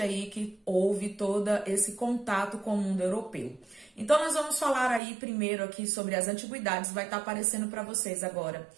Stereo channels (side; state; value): left; drops out; at 5.0 s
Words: que houve todo esse contato com o mundo europeu. Então, nós vamos falar aí primeiro aqui sobre as antiguidades, vai estar aparecendo para vocês agora